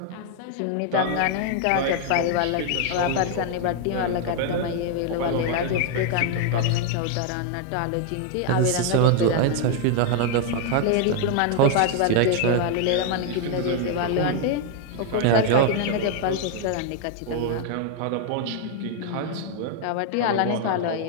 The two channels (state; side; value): different; both; correlation 0.00